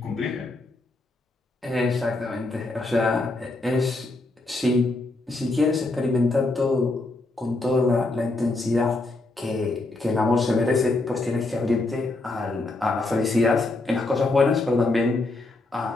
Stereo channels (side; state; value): right; quieter; 3.1 dB